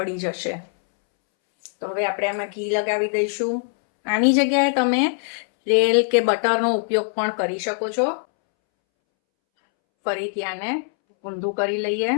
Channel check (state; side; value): silent; right; 64 dB below the other